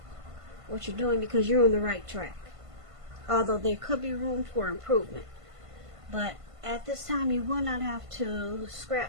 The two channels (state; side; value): late; left; 1.5 ms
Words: what you're doing because you're on the right track. Although there could be room for improvement. But at this time, you will not have to